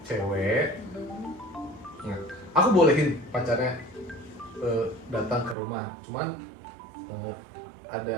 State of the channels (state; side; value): drops out; left; at 5.6 s